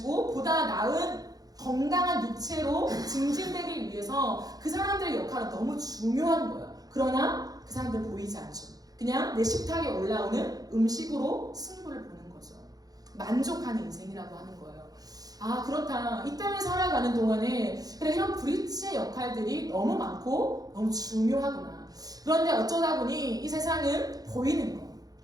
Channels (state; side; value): late; left; 0.18 ms